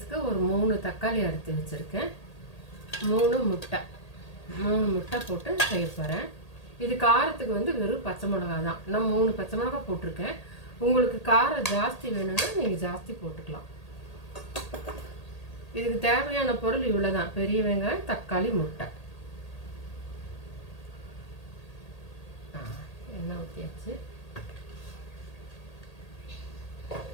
ஒரு 3 தக்காளி அறுத்து வச்சுருக்கேன். 3 முட்டை போட்டு செய்ய போகிறேன். இது காரத்துக்கு வெறும் பச்சை மிளகா தான். நான் 3 பச்சை மிளகா போட்டிருக்கேன். உங்களுக்கு காரம் ஜாஸ்தி வேணும்னா நீங்கள் ஜாஸ்தி போட்டுக்கலாம். இதுக்கு தேவையான பொருள் இவ்வளோ தான்: பெரிய வெங்காயம், தக்காளி, முட்டை. எண்ணெய் ஊற்றியாச்சு.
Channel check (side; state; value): right; late; 1.8 ms